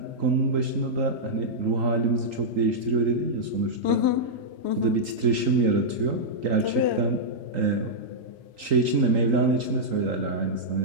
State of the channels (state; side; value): late; left; 3.8 ms